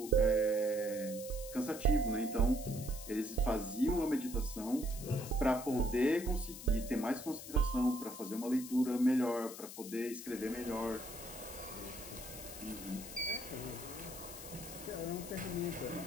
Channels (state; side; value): noise; left; hiss, 12 dB below the sound